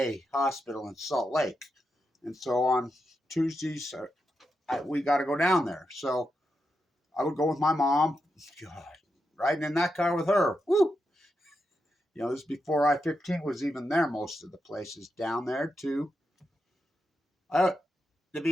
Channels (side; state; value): both; normal; correlation 0.86